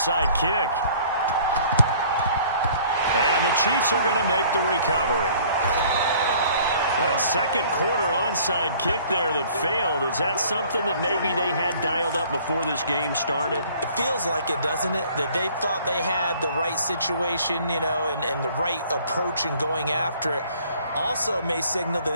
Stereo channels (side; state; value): both; inverted; correlation -0.54